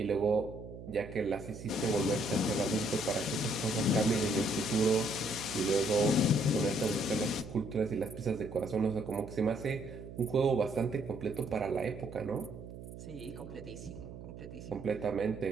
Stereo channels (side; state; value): right; noise; hum, 13 dB below the sound